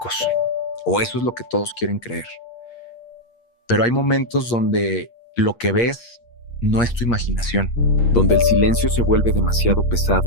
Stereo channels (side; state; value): right; late; 8.5 ms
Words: O eso es lo que todos quieren creer. Pero hay momentos donde lo que ves no es tu imaginación, donde el silencio se vuelve demasiado